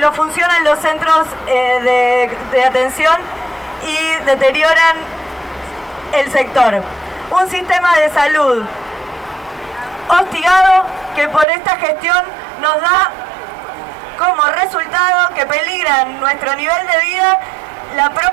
funcionan los centros de atención y deterioran el sector. Un sistema de salud hostigado que por esta gestión nos da como resultado que peligran nuestro nivel de vida, la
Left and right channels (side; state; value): left; drops out; at 11.5 s